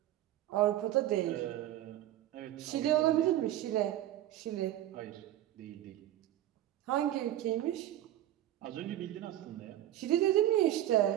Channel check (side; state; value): left; quieter; 13.4 dB